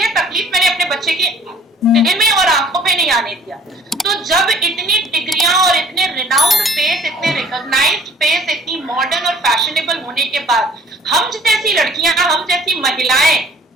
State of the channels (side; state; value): both; normal; correlation 0.53